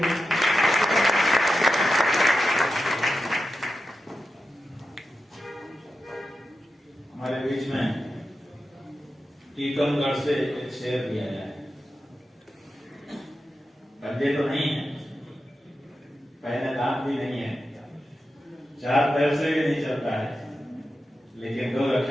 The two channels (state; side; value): normal; both; correlation 0.90